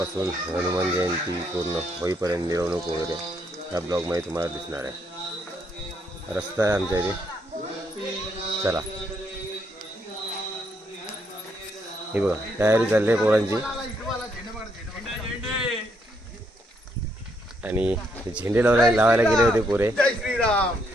हनुमान जयंती पूर्ण होईपर्यंत मिरवणूक वगैरे ह्या ब्लॉगमध्ये तुम्हाला दिसणार आहे। रस्ता आहे आमच्या इथे, चला। हे बघा, तयारी चालली आहे पोरांची आणि झेंडे लावायला गेले होते पोरे। जय श्रीराम,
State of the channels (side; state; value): both; normal; correlation 0.74